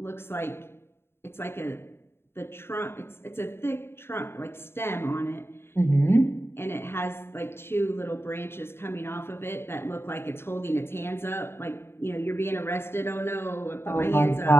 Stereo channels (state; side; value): late; right; 0.11 ms